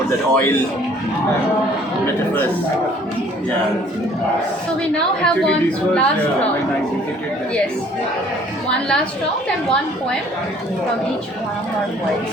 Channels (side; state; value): both; normal; correlation 0.56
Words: that oil metaphors. Yeah. So we now have Actually, one this was last when round. I visited that. Yes. One last round and one poem from each one of our poets.